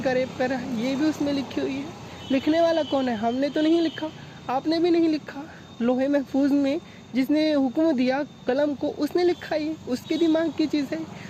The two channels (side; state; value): both; identical; correlation 1.00